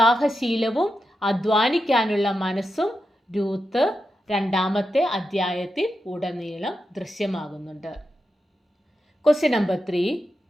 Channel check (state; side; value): normal; both; correlation 0.88